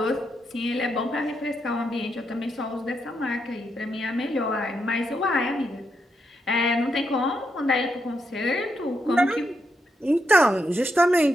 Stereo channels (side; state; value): both; normal; correlation 0.81